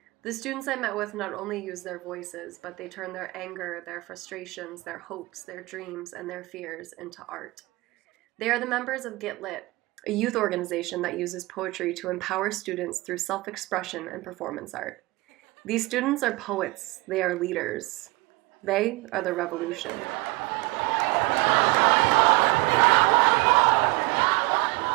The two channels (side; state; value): left; quieter; 22.5 dB